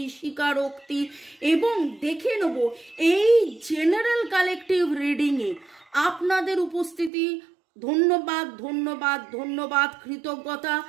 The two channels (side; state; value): left; drops out; at 7.1 s